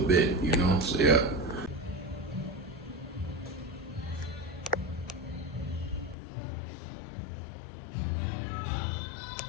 bit, you know, so yeah.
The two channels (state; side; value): drops out; right; at 6.2 s